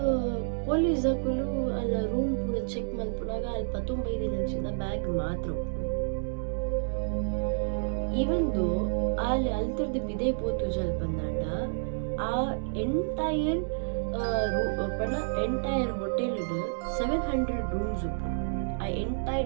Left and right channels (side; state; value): left; silent; digital silence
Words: ಪೊಲೀಸ್ ಹಾಕಲು ಅಲ್ಲ ರೂಮ್ ಪೂರ ಚೆಕ್ ಮಲ್ಪುನಾಗ ಅಲ್ಲಿ 15 ದಿನಂಚಿಂದ ಬ್ಯಾಗ್ ಮಾತ್ರ ಇವಂದು ಅಲ್ಲಿ ಅಲ್ತರ್ದು ಬಿದೆ ಪೋತು ಜಲ್ ಬಂದಾಂಡ ಆ ಎಂಟೈರ್ ಹೋಟೆಲ್ 700 ರೂಮ್ಸ್ ಉಪ್ಪು ಆ